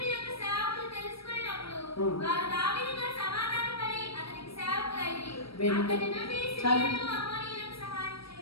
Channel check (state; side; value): late; right; 0.76 ms